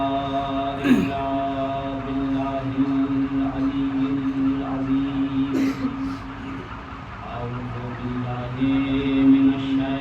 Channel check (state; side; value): identical; both; correlation 1.00